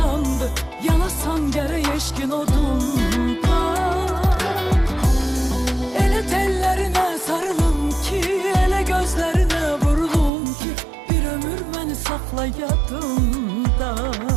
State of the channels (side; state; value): left; drops out; at 10.3 s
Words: Yanasan gerek eşkin odunda. Elə tellerine sarılım ki, elə gözlerine vurulum ki, bir ömür beni sakla yadımda.